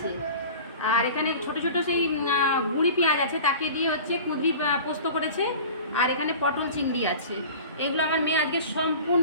আর এখানে ছোট ছোট সেই গুঁড়ি পেঁয়াজ আছে, তাকে দিয়ে হচ্ছে কুঁদরি পোস্ত করেছে, আর এখানে পটল চিংড়ি আছে। এগুলো আমার মেয়ে আজকে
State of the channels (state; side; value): inverted; both; correlation -0.39